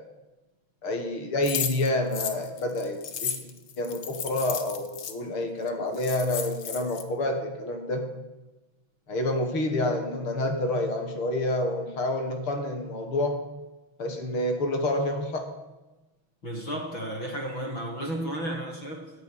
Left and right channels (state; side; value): late; right; 6.1 ms